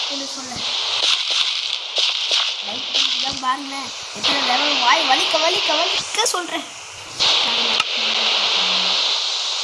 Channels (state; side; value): identical; both; correlation 1.00